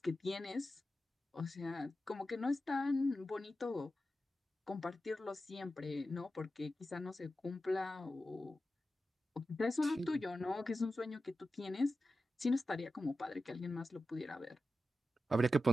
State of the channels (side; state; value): both; normal; correlation 0.92